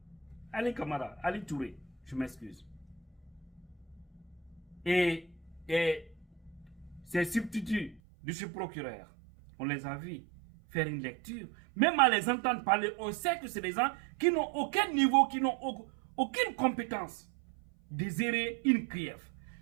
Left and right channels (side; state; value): left; drops out; at 8.0 s